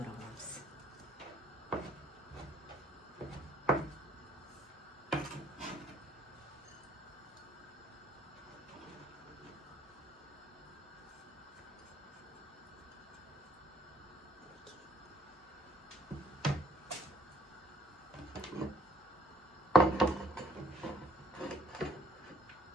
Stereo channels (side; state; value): both; normal; correlation 0.62